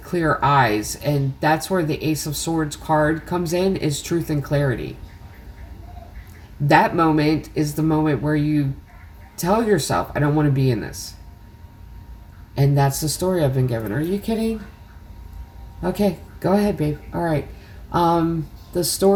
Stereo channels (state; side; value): identical; both; correlation 1.00